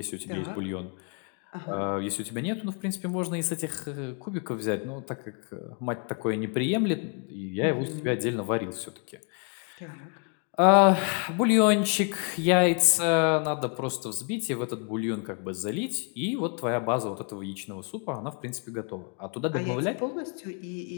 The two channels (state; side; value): quieter; right; 38.9 dB